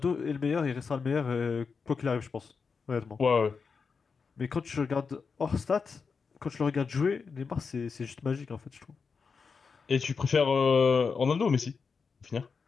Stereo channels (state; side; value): quieter; right; 5.3 dB